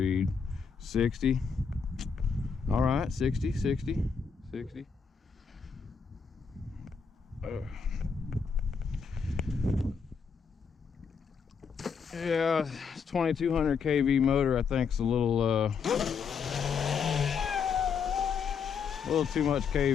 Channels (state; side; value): quieter; right; 6.0 dB